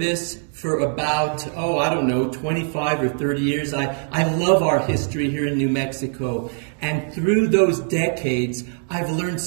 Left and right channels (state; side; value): silent; left; 64 dB below the other